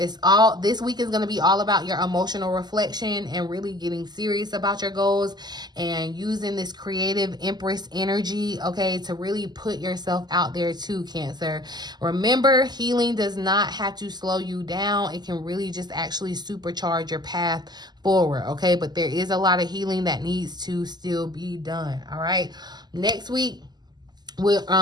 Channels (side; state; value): left; late; 0.20 ms